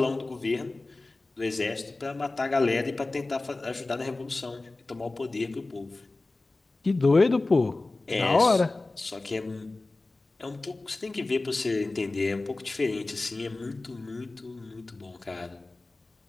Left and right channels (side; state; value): right; quieter; 3.2 dB